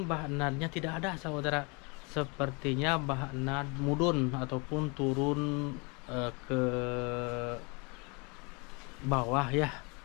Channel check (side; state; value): right; quieter; 30.8 dB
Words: Mbak Natnya tidak ada saudara. Sepertinya Mbak Nat mudun ataupun turun ke bawah ya.